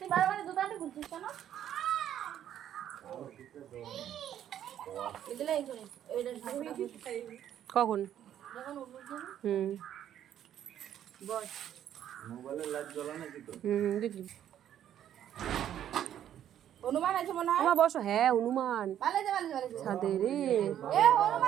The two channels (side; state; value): left; quieter; 10.6 dB